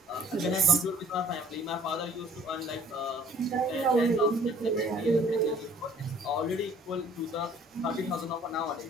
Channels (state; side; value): normal; both; correlation 0.55